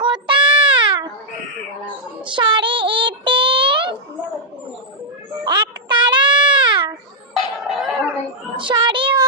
স্বরে এতে একতারা স্বরে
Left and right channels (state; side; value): normal; both; correlation -0.07